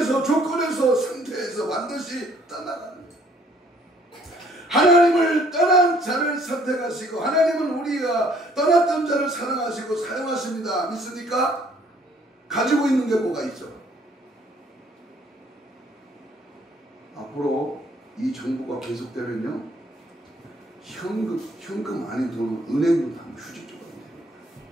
조건에서 상태에서 반드시 떠나가는 거예요. 하나님을 떠난 자를 선택하시고 하나님은 우리가 떠났던 자를 사랑하시고 사용하십니다. 믿습니까? 가지고 있는 게 뭐가 있죠? 앞으로 이 정부가 계속되면요 현금 아닌 돈은 은행도 다 휴직조가 되는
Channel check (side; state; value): both; normal; correlation 0.62